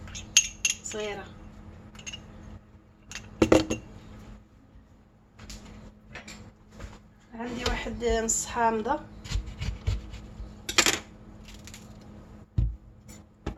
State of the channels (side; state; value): both; identical; correlation 1.00